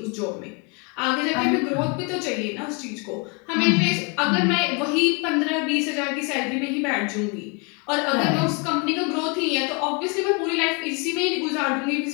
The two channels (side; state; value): right; quieter; 31.8 dB